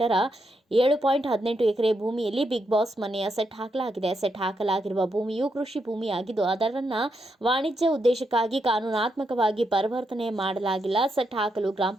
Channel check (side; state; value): both; normal; correlation 0.81